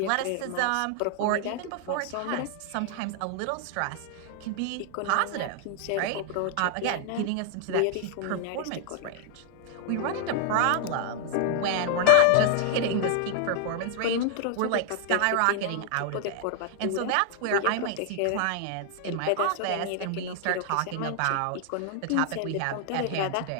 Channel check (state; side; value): different; both; correlation 0.00